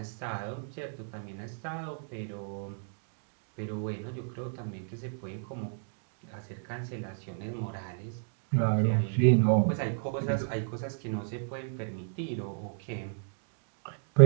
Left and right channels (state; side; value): silent; left; digital silence